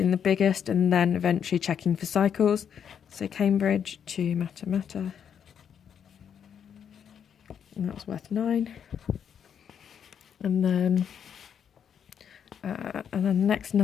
the biggest and then eventually checking for cycles. So Cambridge to Mata, and that was worth 9. And then the next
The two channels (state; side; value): quieter; right; 8.1 dB